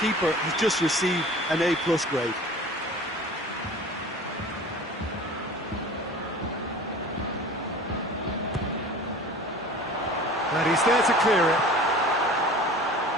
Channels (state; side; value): normal; both; correlation 0.41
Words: keeper has just received an A+ grade. And he's there to clear it.